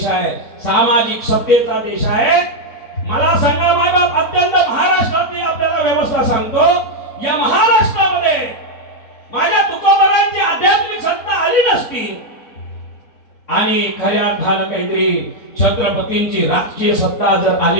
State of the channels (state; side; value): late; right; 3.6 ms